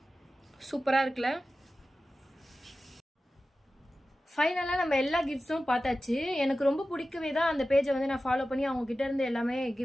சூப்பராக இருக்குல்ல? ஃபைனலாக நம்ம எல்லா கிஃப்ட்ஸும் பார்த்தாச்சு. எனக்கு ரொம்ப பிடிக்கவே தான் அந்த பேஜை வந்து நான் ஃபாலோ பண்ணி அவங்ககிட்ட இருந்து எல்லாமே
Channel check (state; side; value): normal; both; correlation 0.94